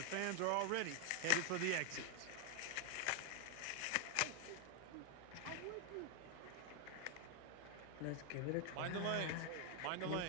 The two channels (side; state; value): both; different; correlation 0.01